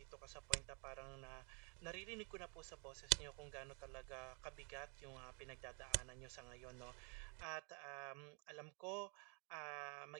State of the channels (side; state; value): left; quieter; 35.6 dB